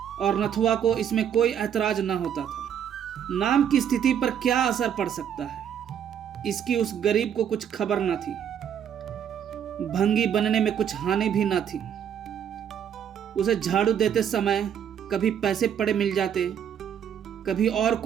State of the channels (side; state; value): left; quieter; 8.8 dB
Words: और नथुआ को इसमें कोई ऐतराज न होता था। नाम की स्थिति पर क्या असर पड़ सकता है, इसकी उस गरीब को कुछ खबर न थी। भंगी बनने में कुछ हानि भी न थी। उसे झाड़ू देते समय कभी पैसे पड़े मिल जाते, कभी और